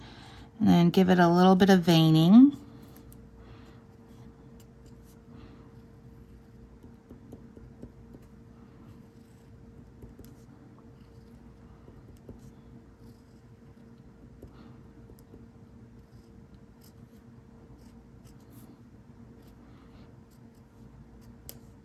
and then give it a little bit of veining.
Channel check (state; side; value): identical; both; correlation 1.00